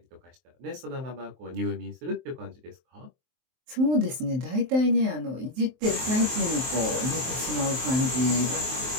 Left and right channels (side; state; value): left; late; 23 ms